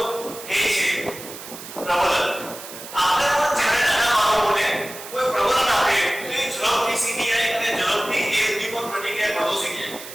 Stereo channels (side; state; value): right; noise; hiss, 13 dB below the sound